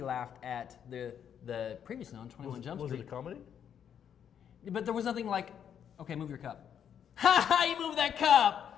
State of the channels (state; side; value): quieter; right; 8.7 dB